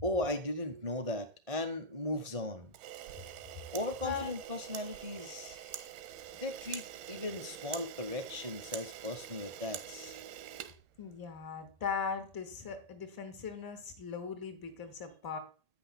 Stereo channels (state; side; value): late; left; 1.8 ms